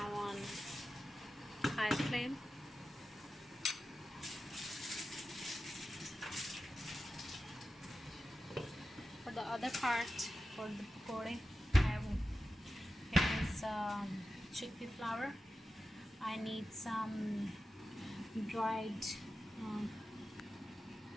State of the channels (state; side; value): normal; both; correlation 0.93